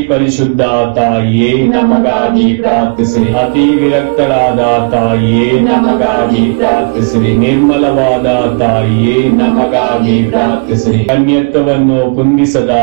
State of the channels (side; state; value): left; quieter; 35.5 dB